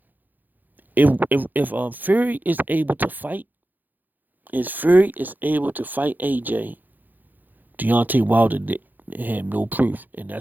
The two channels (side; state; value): left; late; 0.085 ms